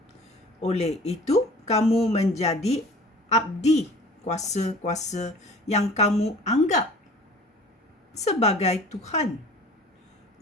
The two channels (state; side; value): normal; both; correlation 0.46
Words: Oleh itu, kamu menjadi abdi kuasa-kuasa yang kamu anggap sebagai Tuhan.